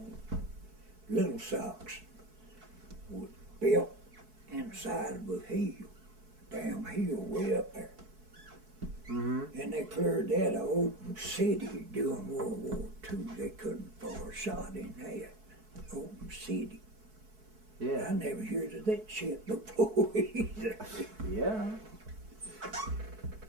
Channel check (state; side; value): late; left; 4.6 ms